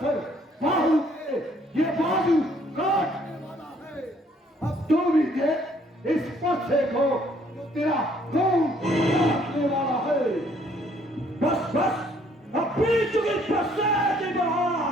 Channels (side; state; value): both; normal; correlation 0.64